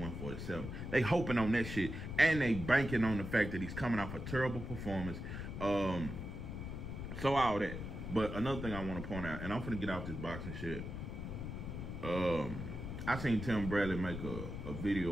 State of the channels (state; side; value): noise; left; rumble, 6 dB below the sound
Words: They hoping on that shit, and they banking on the fact that he's coming off a terrible performance. So all that. But another thing I want to point out, and I'm finna get off this boxing shit. I seen Tim Bradley make a